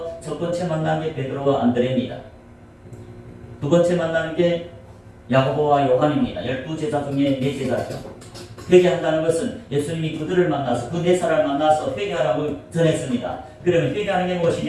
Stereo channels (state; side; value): identical; both; correlation 1.00